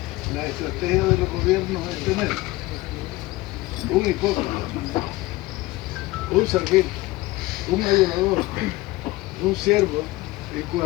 la estrategia de los gobiernos es tener un hipócrita, un servil, un adulador, un siervo, y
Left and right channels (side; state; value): right; quieter; 19.6 dB